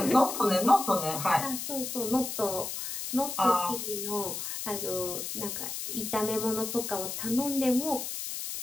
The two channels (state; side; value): noise; left; hiss, 5 dB below the sound